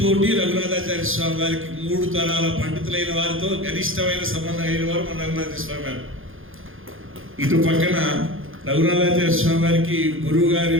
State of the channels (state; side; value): late; left; 0.59 ms